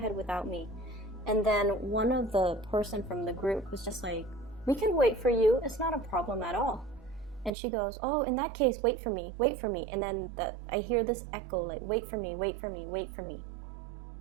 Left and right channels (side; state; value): left; drops out; at 7.5 s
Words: without me. And then one of the person from the group was just like, we can wait for you, it's not a problem at all. And she goes, oh, in that case, wait for me. And then I hear this echo, like, wait for me.